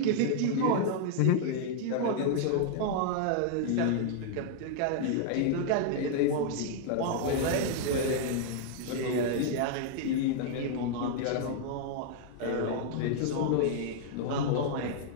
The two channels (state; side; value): different; both; correlation -0.01